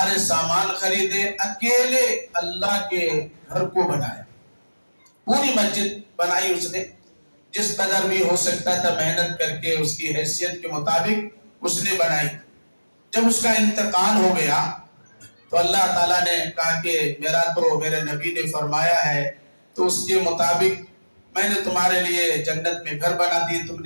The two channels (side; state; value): both; inverted; correlation -1.00